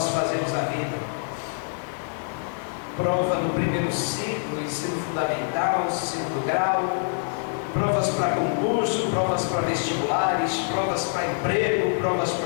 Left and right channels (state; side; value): silent; right; digital silence